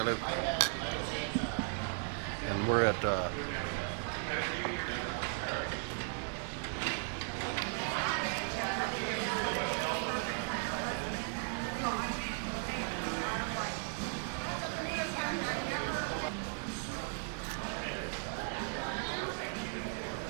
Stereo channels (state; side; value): silent; left; 53 dB below the other